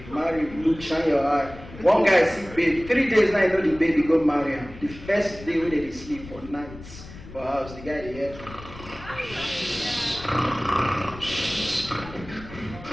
Marry, look, shine your eye. One guy see baby, 3 days now you know the baby go marry him. The first day wey they sleep for nights for house, the guy dey hear.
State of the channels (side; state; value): left; noise; rumble, 16 dB below the sound